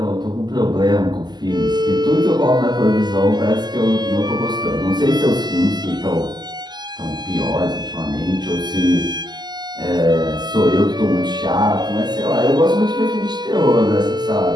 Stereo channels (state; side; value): late; left; 0.21 ms